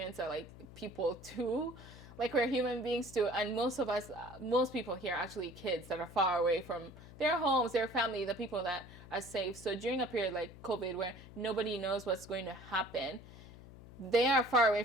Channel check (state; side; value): noise; left; hum, 17 dB below the sound